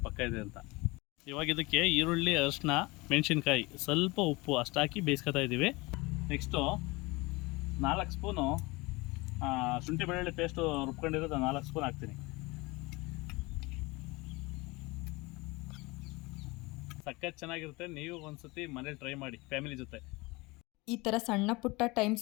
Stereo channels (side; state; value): right; quieter; 23.9 dB